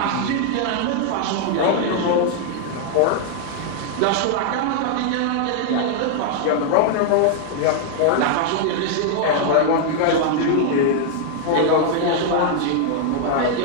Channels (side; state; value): both; different; correlation 0.00